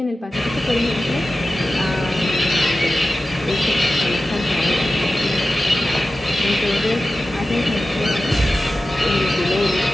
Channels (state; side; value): normal; both; correlation 0.94